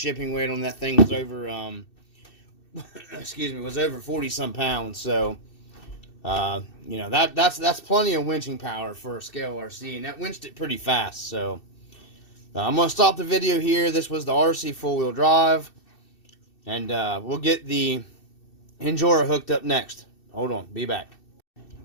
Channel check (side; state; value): right; late; 2.6 ms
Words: weight on that thing was over excuse me, was over 40-some pounds. So you know, that's plenty of winching power for a scale RC, and that winched it pretty fast. So I'm going to stop the video here. This was the RC four-wheel drive. And we'll get the Injora hooked up next. Hold on. Be back.